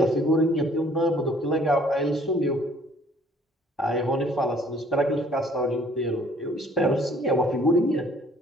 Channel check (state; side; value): normal; both; correlation 0.58